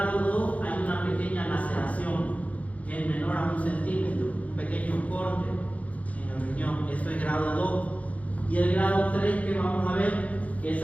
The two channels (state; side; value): late; right; 0.068 ms